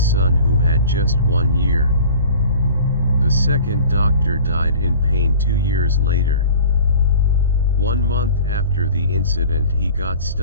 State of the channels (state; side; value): inverted; both; correlation -0.43